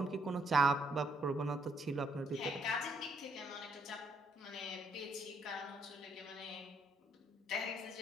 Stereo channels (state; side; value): normal; both; correlation 0.71